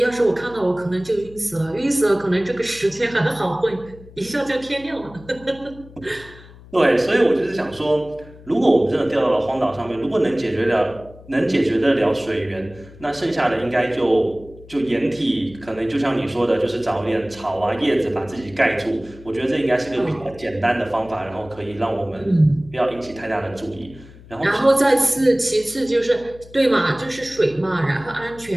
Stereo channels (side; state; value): left; noise; hum, 21 dB below the sound